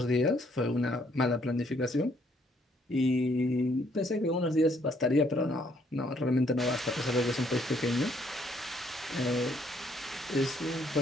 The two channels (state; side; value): normal; both; correlation 0.67